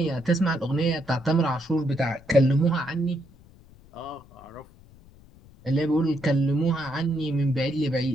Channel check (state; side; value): noise; left; rumble, 24 dB below the sound